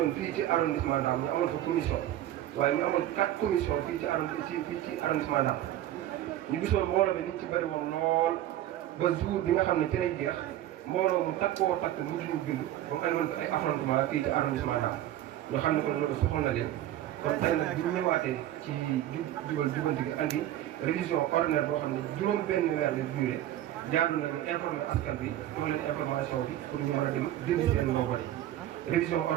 fii ci arrondissement Ndam ñu amoon fa commission waaye ñu amoon 4 commission fii ci arrondissement Ndam ñu gisoon mbooloo bi niñ ci bëri woon lool ba jour bi nga xam ne ci lay jeex mbooloo mu takkoo takk mujj ñu bind ba mu andoon ay affrontement fii ci arrondissement Ndam ñoo xam ne kon loolu soxal na leen kon tey nag bi ñu ñëwaatee ci jubanti gi andi révision ordinaire boo xam ne juróom benn weer la durée jaadu nañu informer askan bi jox leen information bi pour ñu mën a dem dindi seen logo yi révision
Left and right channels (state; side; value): quieter; left; 13.0 dB